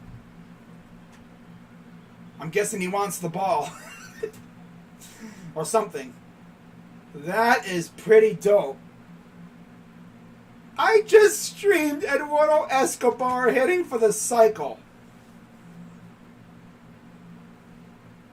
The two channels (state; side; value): identical; both; correlation 1.00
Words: I'm guessing he wants the ball. Or something. That is pretty dope. I just streamed Eduardo Escobar hitting for the cycle.